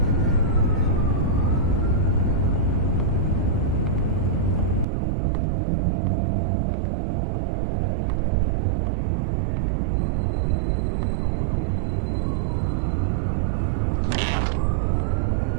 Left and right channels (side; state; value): left; drops out; at 4.9 s